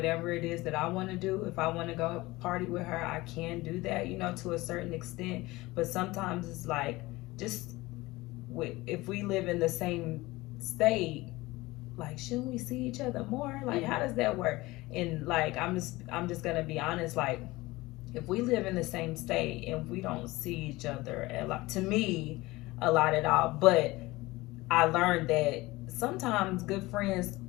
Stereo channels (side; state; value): right; quieter; 20.3 dB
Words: it is that I want to do. If I want to go party with her, I can do that, to a certain extent. But sometimes it's like, just if we live in the same state, like, shouldn't we see each other more? Like, how does that work? And like, I'm just gonna be honest, like, if we live in the same state and we don't see each other a lot, to me, a lot at all. But I learned that sometimes good friends